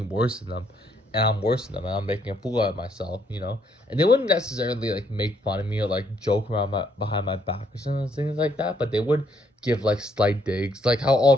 worse than them, and I'm worse than them, and I'm making a fool out of myself. And they wouldn't necessarily like make fun of me or like joke around my behind my back or something things like that, but they would give like slight digs, like how all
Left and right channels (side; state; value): both; normal; correlation 0.71